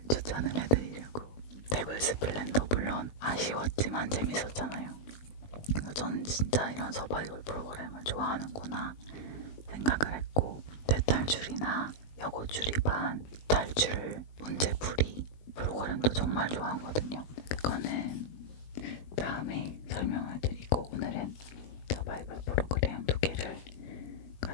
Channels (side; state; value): right; late; 19 ms